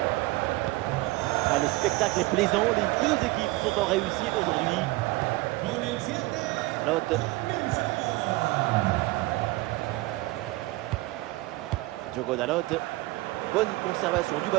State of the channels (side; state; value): left; quieter; 20.7 dB